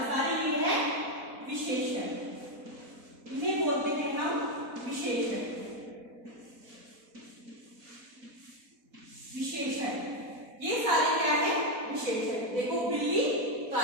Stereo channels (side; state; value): left; late; 4.1 ms